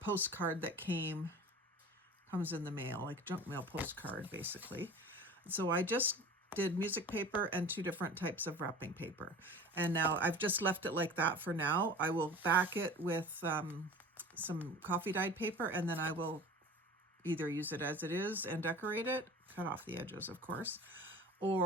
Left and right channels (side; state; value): both; normal; correlation 0.39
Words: that comes in the mail, like junk mail postcard basically. So I just did music paper and 2 different types of wrapping paper. And now I've just left it like that for now. I will back it with some coffee dyed paper, and then I will either use it as it is and decorate it, cut off the edges of course,